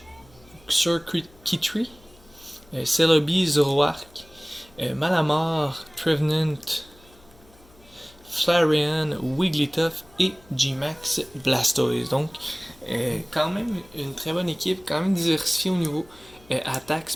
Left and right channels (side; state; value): left; noise; hum, 27 dB below the sound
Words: Circuit Kitry, Celebi, Zoroark, Malamar, Trevenant, Flareon, Wigglytuff et G-Max Blastoise. Donc, quand même une très bonne équipe, quand même diversifiée au niveau attaque,